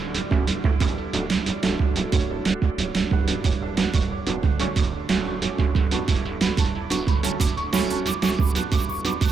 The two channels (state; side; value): quieter; left; 3.9 dB